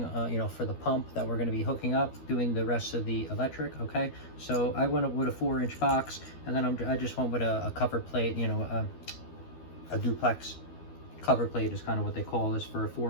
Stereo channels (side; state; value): right; late; 12 ms